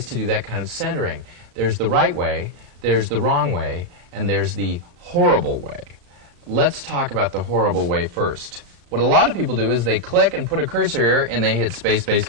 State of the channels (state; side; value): late; left; 35 ms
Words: to do that kind of centering. There's the right way, there's the wrong way, and there's the horrible way. Let's talk about the horrible way first. What a lot of people do is they click and put a cursor here and they hit space, space,